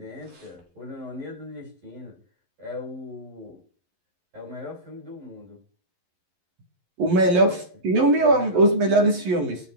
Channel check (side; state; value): left; late; 11 ms